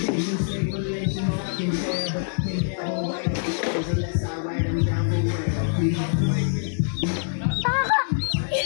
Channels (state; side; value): silent; right; digital silence